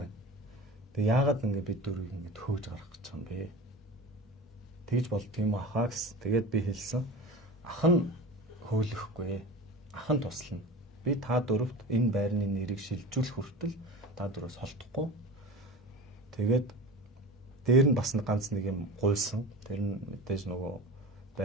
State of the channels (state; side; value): normal; both; correlation 0.32